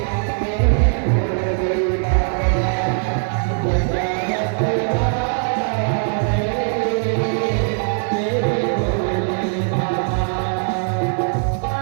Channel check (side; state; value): left; silent; 60 dB below the other